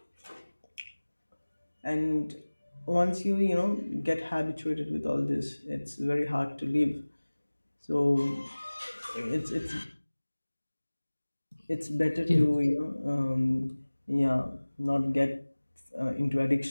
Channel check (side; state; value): both; inverted; correlation -1.00